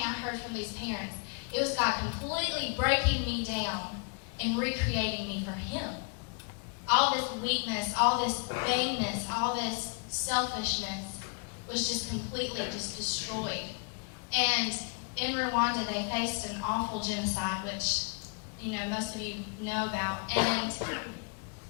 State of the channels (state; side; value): quieter; right; 37.7 dB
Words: I heard from these parents, it was God completely breaking me down and recreating me for Him. All this weakness, all this vainness, all this selfishness was just completely destroyed. And in Rwanda, they faced an awful genocide, which, most of you know about. And